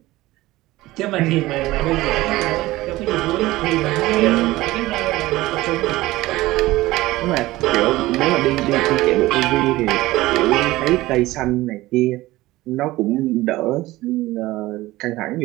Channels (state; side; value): quieter; left; 18.1 dB